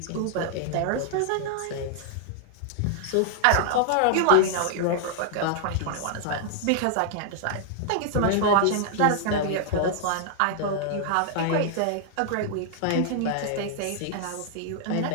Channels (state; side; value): different; both; correlation -0.01